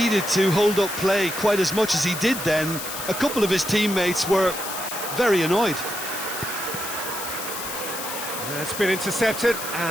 to hold up play quite as much as he did then. A couple of his teammates were very annoyed. It's been intercepted,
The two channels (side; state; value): left; noise; hiss, 7 dB below the sound